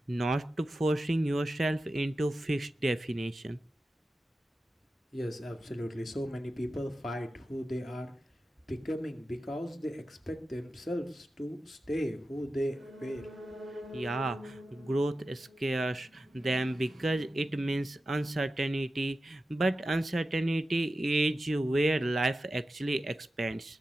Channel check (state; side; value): normal; both; correlation 0.92